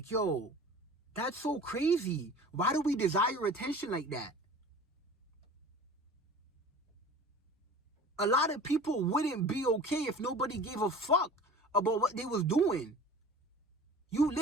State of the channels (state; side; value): normal; both; correlation 0.41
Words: yo, that's so crazy. Why do we desire attention like that? A lot of people wouldn't be okay if nobody gave a fuck about what they was doing. You